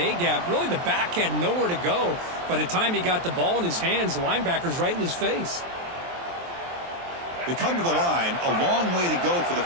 Really, the back had nowhere to go. By the time he got the ball in his hands, the linebacker's right in his face. They come to the line, a long way to go for the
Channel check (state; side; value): late; left; 23 ms